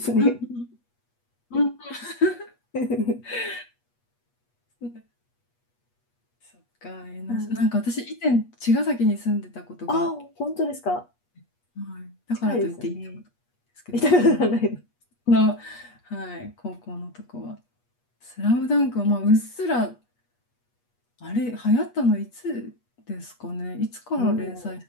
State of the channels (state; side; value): late; right; 8.3 ms